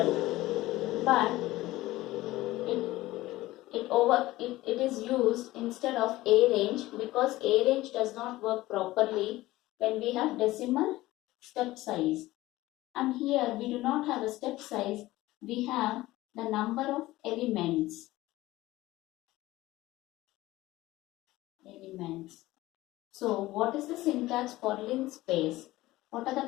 but it is used instead of arange, because arange does not work properly when we have decimal step size. And here we do not have a step size, we have the number of elements. So what is the syntax for linspace? What are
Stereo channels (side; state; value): right; quieter; 17.6 dB